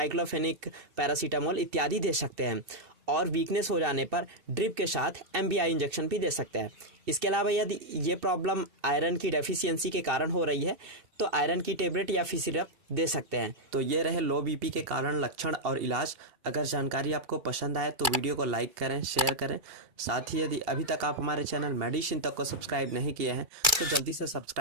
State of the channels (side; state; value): left; late; 2.3 ms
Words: पैरासीटामोल इत्यादि दे सकते हैं। और वीकनेस हो जाने पर ड्रिप के साथ एमबीआई इंजेक्शन भी दे सकते हैं। इसके अलावा यदि ये प्रॉब्लम आयरन की डेफिशिएंसी के कारण हो रही है तो आयरन की टेबलेट या फिर सिरप दे सकते हैं। तो ये रहे लो बीपी के कारण, लक्षण और इलाज। अगर जानकारी आपको पसंद आए तो वीडियो को लाइक करें, शेयर करें। साथ ही यदि अभी तक आप हमारे चैनल मेडिसिन तक को सब्सक्राइब नहीं किए हैं तो जल्दी से